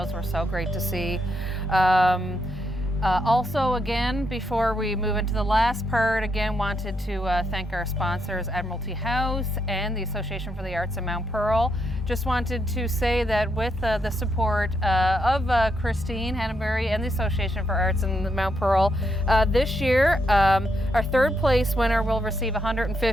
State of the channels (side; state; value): both; normal; correlation 0.79